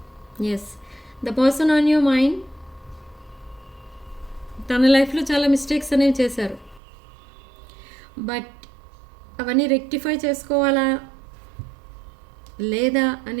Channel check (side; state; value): left; drops out; at 6.8 s